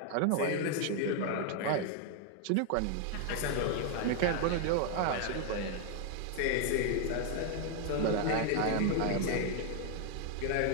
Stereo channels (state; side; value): different; both; correlation 0.00